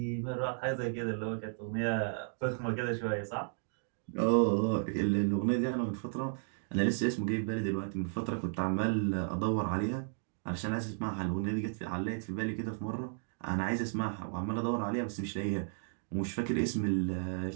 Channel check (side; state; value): left; silent; digital silence